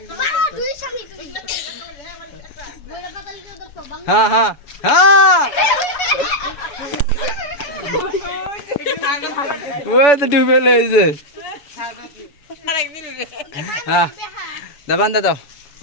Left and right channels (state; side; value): late; right; 6.9 ms